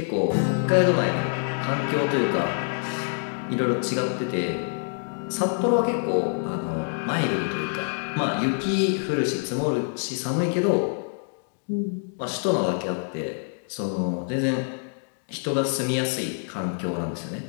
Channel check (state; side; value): silent; right; digital silence